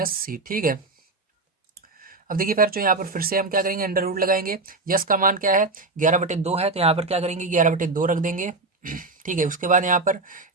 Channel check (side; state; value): left; quieter; 3.4 dB